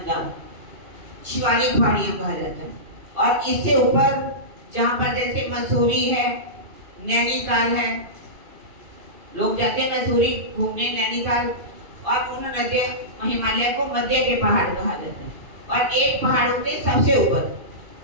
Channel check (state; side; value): late; left; 2.8 ms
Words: शिवालिक पहाड़ियां कहा जाता है। और इससे ऊपर जहाँ पर जैसे मसूरी है, नैनीताल है, लोग जाते हैं मसूरी घूमने नैनीताल, और उन नदियां हिमालय को मध्य के पहाड़ कहा जाता है। और एक पहाड़ के सबसे ऊपर